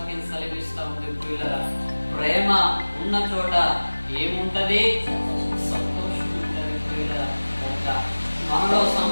సెలవిస్తా ఉంది. ప్రియులారా, ప్రేమ ఉన్న చోట ఏముంటది? సంతోషం ఉంటది. ప్రియులారా, మనలో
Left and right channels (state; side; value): inverted; both; correlation -1.00